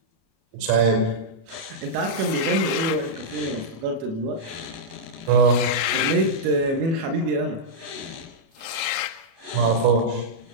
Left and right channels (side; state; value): left; late; 36 ms